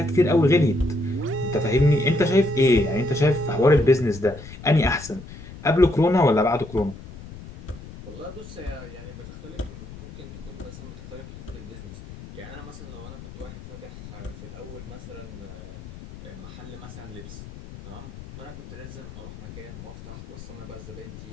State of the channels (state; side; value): noise; left; rumble, 14 dB below the sound